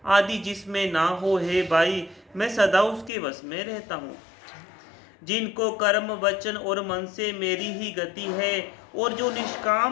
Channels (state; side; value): drops out; right; at 3.1 s